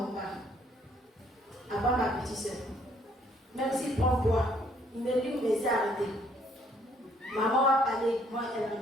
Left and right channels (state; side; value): normal; both; correlation 0.65